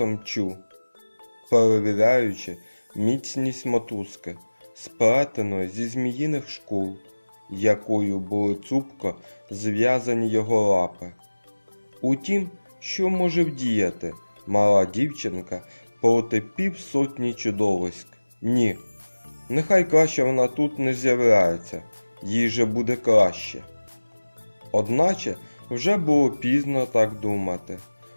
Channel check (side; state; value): both; inverted; correlation -1.00